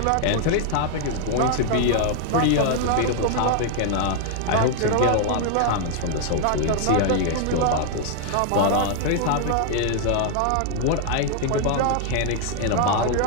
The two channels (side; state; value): both; different; correlation 0.00